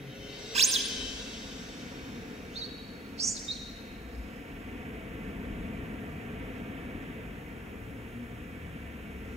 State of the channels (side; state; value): both; normal; correlation 0.51